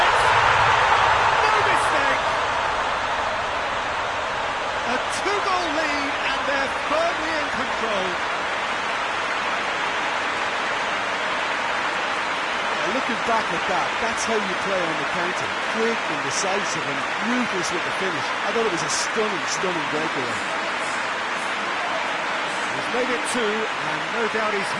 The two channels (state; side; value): identical; both; correlation 1.00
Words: No mistake. A two-goal lead, and they're firmly in control. Looking back at that, that's how you play on the counter. Quick and decisive and ruthless with the finish. I thought it was a stunning, stunning breakaway. He's made it two, and no doubt he's